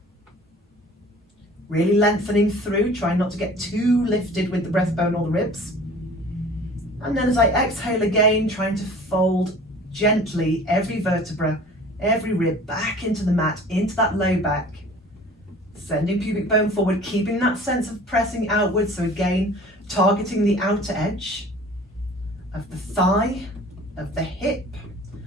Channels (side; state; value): both; normal; correlation 0.46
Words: really lengthening through, trying not to get too lifted with the breastbone or the ribs. And then as I exhale again, trying to fold gently every vertebra, every rib back into the mat, into that low back. Sending pubic bone forward, keeping that sense of pressing outwards. So again, targeting the outer edge of the thigh, of the hip.